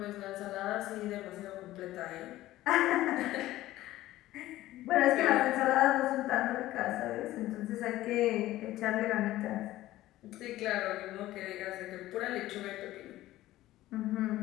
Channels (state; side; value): quieter; right; 15.6 dB